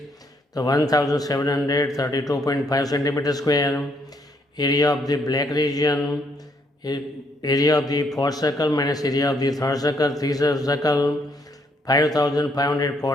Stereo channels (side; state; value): both; normal; correlation 0.71